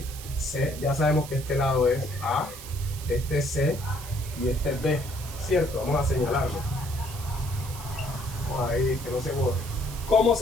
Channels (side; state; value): right; noise; hiss, 13 dB below the sound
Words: C. Ya sabemos que este lado es A, este es C y este es B, ¿cierto? Vamos a señalarlo. Vamos a ir, que no se borre. ¿Cómo